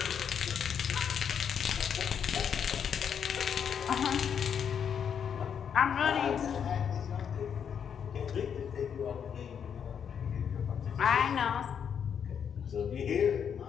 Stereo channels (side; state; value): right; quieter; 7.7 dB